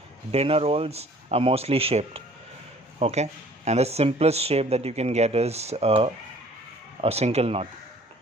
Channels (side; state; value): both; normal; correlation 0.53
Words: Dinner rolls are mostly shaped. Okay, and the simplest shape that you can get is a single knot.